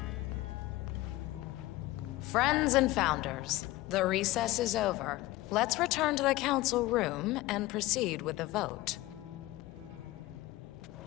Friends and founders, the recess is over. Let's return to the council room and proceed with the vote.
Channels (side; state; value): right; quieter; 18.3 dB